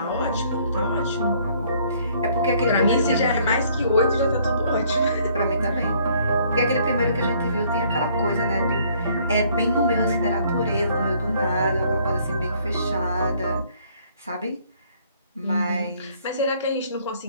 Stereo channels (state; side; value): inverted; both; correlation -0.62